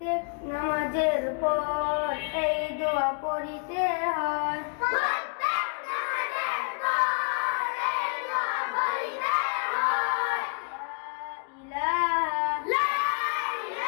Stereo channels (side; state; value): right; quieter; 39.1 dB